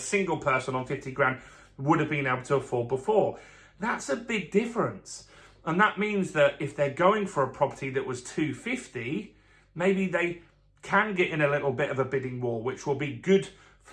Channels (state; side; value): identical; both; correlation 1.00